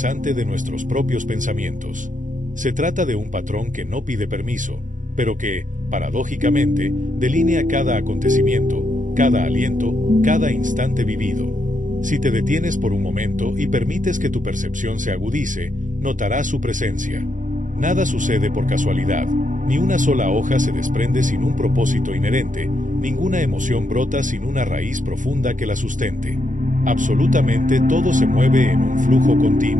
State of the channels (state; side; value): late; left; 0.37 ms